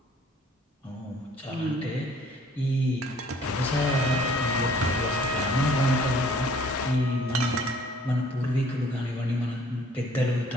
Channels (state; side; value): normal; both; correlation 0.57